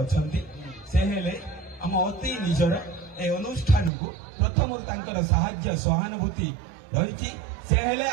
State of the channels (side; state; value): left; drops out; at 3.9 s